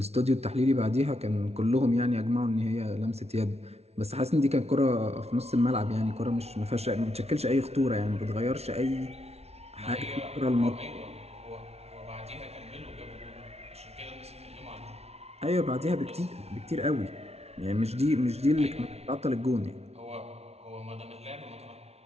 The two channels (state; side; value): late; left; 0.31 ms